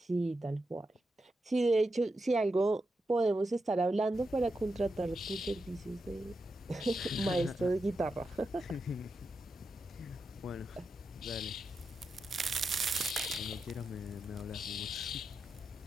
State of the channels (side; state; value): both; normal; correlation 0.87